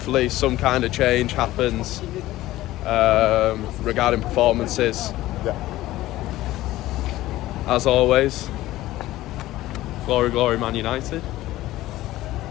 some kind of change happens regarding performances. yeah. As always, glory, glory, Man United.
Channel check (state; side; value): quieter; right; 16.2 dB